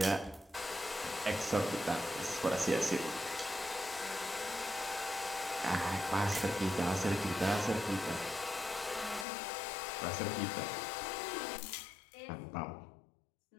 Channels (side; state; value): right; drops out; at 9.2 s